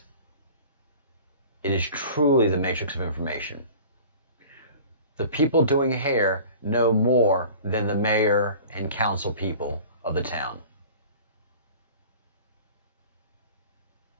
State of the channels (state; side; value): inverted; both; correlation -0.43